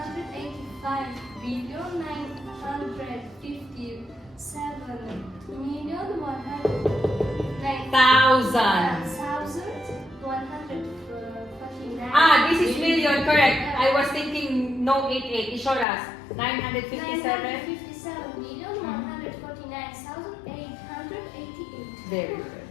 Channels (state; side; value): drops out; right; at 15.9 s